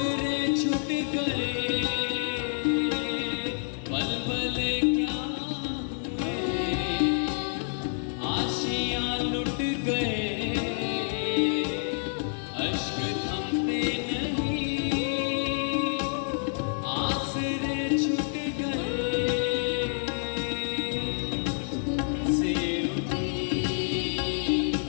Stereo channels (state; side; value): silent; right; digital silence